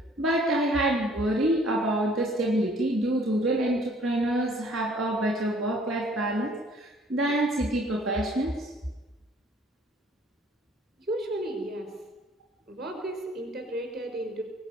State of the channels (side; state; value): both; normal; correlation 0.57